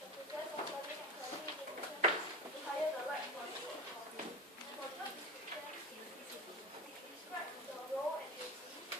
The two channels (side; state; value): both; normal; correlation 0.27